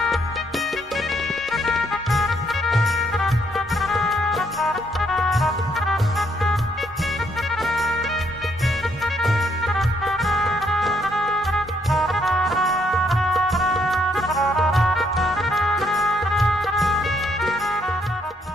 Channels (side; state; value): both; normal; correlation 0.72